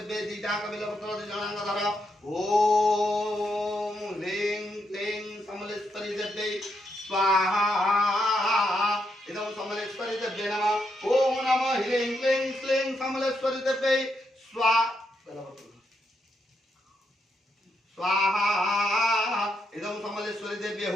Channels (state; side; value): normal; both; correlation 0.80